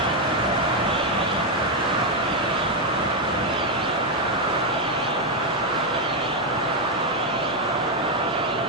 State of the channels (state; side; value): normal; both; correlation 0.03